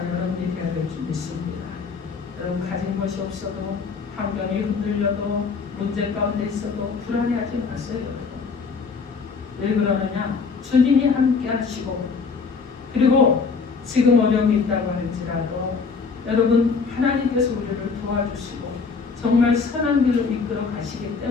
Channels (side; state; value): right; quieter; 5.0 dB